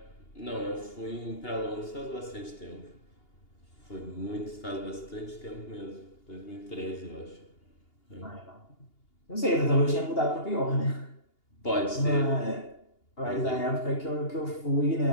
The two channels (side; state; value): right; late; 2.8 ms